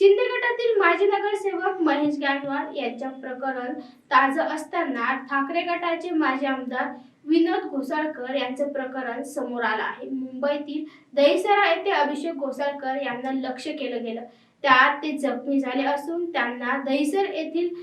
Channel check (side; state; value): both; identical; correlation 1.00